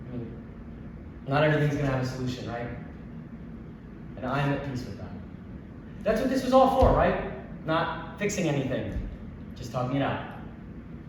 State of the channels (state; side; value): identical; both; correlation 1.00